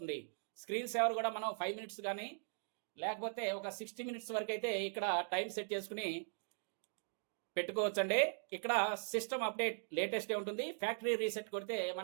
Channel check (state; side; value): silent; left; digital silence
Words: స్క్రీన్ సేవర్ కూడా మనం 5 minutes కానీ లేకపోతే ఒక 60 minutes వరకు అయితే ఇక్కడ టైం సెట్ చేసుకుని పెట్టుకోవచ్చండి. ఇక్కడ సిస్టమ్ అప్డేట్ లేటెస్టే ఉంటుంది. ఫ్యాక్టరీ రీసెట్ కొడితే